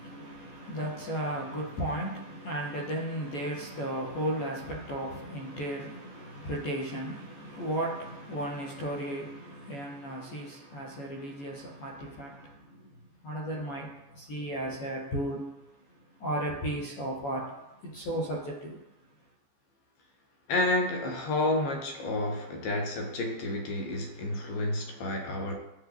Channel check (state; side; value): late; right; 14 ms